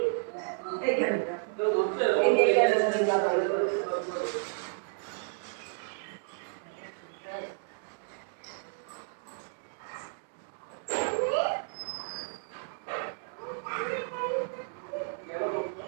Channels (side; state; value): left; silent; digital silence